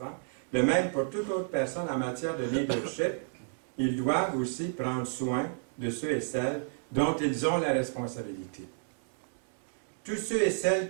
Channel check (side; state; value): left; silent; digital silence